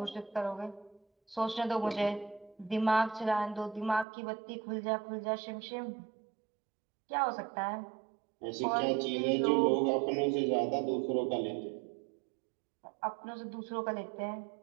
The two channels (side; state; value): left; drops out; at 4.0 s